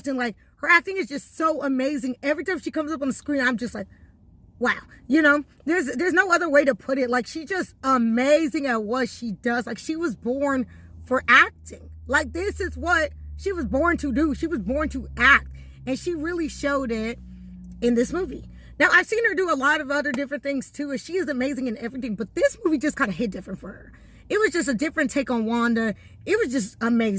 like, her acting is just so amazing. Every time she comes up on the screen, I'm just like, wow, you know, there's no other way to put it. Like, she's just amazing at what she does. Like, she was born for acting. Like, this is what she was born to do. She was born to act, and she really showed it in this movie. Now, I've seen her do a lot of other different things too, and she is amazing in everything, but this movie just kind of hit different for her. It was just a different take on Wanda. It was just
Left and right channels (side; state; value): both; identical; correlation 1.00